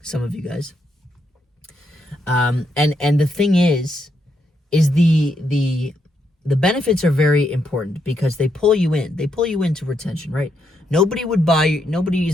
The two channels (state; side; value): normal; both; correlation 0.79